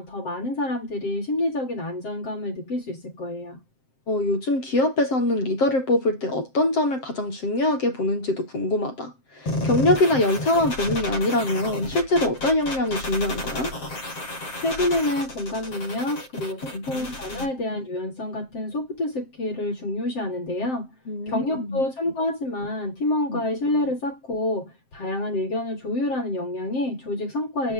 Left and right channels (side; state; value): right; late; 7.6 ms